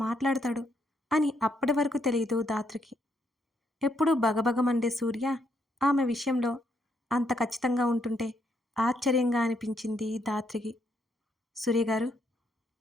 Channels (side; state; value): both; normal; correlation 0.75